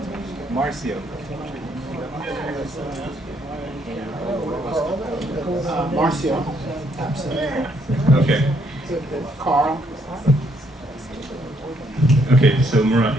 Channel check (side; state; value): both; normal; correlation 0.71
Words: Marcio. Marcio? Absent. Okay. Carl? Okay, so Murat,